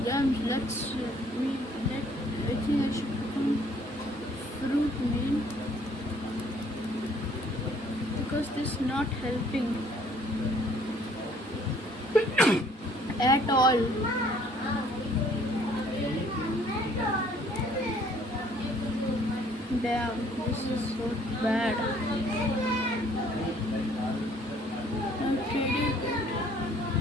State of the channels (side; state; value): both; normal; correlation 0.60